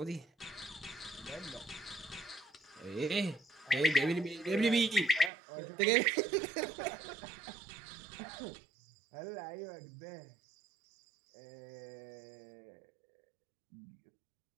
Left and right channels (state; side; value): drops out; left; at 5.3 s